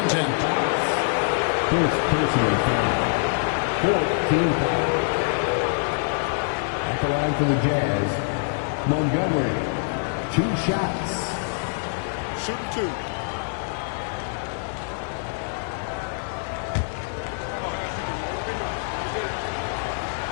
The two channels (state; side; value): silent; right; digital silence